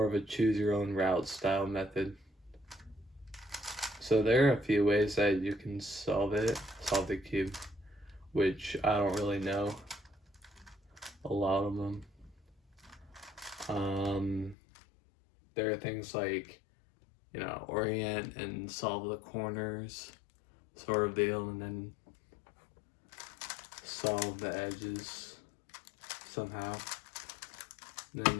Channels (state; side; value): drops out; right; at 14.6 s